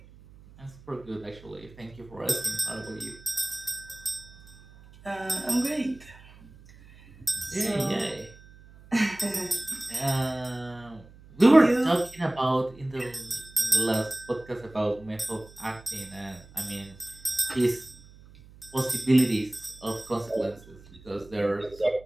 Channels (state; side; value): noise; right; hum, 22 dB below the sound